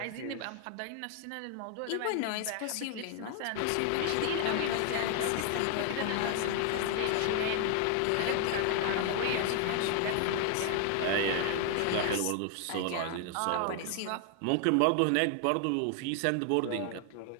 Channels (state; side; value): different; both; correlation 0.00